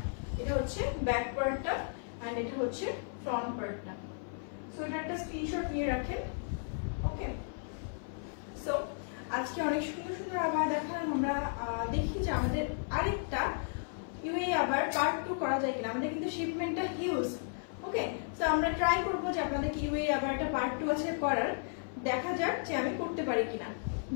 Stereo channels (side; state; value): right; silent; 55 dB below the other